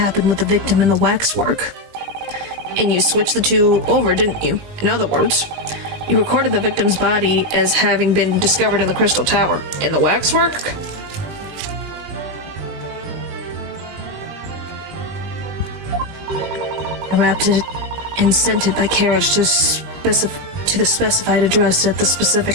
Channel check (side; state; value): left; late; 20 ms